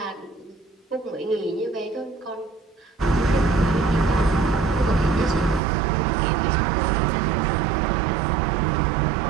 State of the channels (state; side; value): drops out; left; at 5.6 s